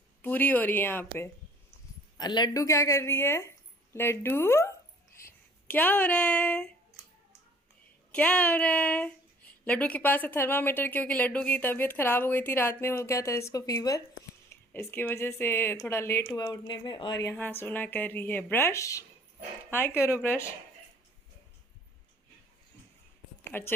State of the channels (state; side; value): normal; both; correlation 0.54